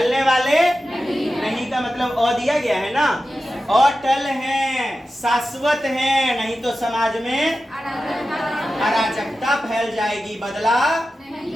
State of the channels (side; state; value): both; normal; correlation 0.93